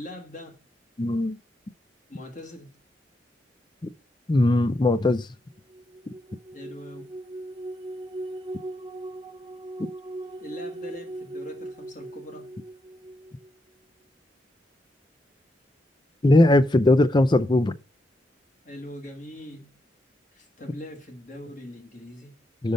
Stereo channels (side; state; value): both; normal; correlation 0.83